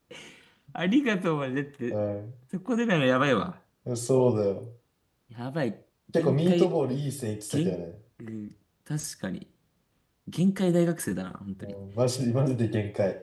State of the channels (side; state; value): both; identical; correlation 1.00